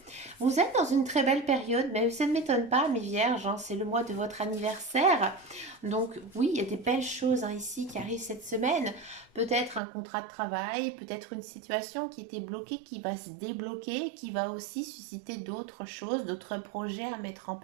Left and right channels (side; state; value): left; drops out; at 9.8 s